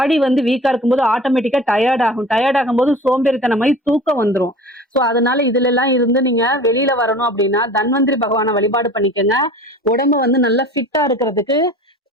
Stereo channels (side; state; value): both; normal; correlation 0.41